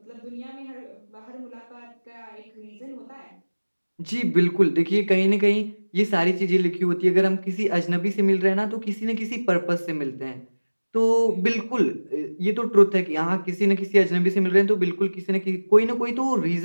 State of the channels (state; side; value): inverted; both; correlation -1.00